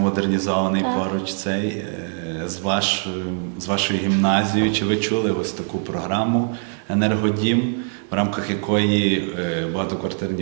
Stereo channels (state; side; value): silent; left; 58 dB below the other